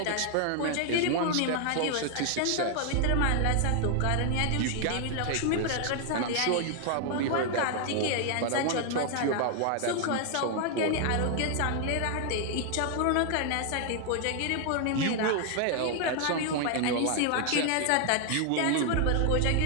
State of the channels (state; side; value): different; both; correlation 0.00